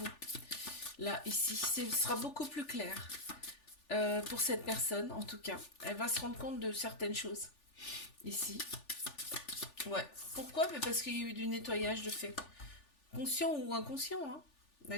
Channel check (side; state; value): right; late; 3.4 ms